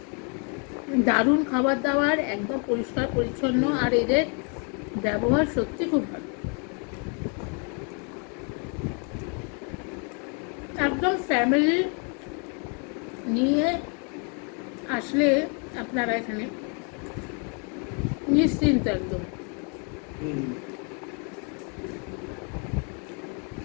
দারুণ খাবার দাবার, একদম পরিষ্কার পরিচ্ছন্ন, আর এদের ব্যবহার সত্যি খুব ভালো। একদম ফ্যামিলি নিয়ে আসলে আপনারা এখানে নিশ্চিন্ত একদম।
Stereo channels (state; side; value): quieter; right; 37.7 dB